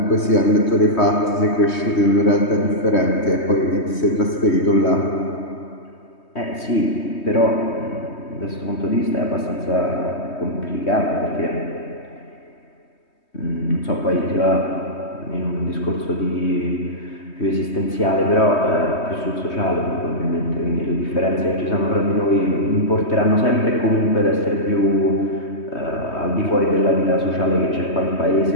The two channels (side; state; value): right; late; 3.2 ms